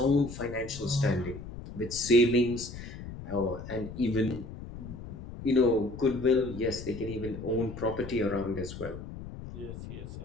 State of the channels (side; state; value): left; noise; rumble, 11 dB below the sound